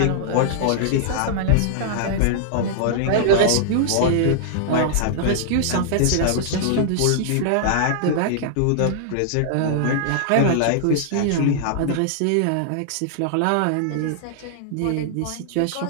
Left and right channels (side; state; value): both; different; correlation -0.01